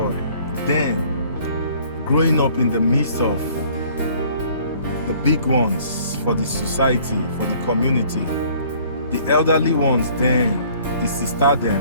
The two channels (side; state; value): both; inverted; correlation -0.56